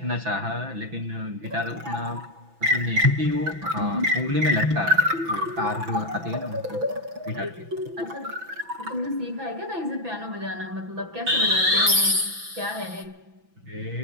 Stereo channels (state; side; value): late; left; 6.0 ms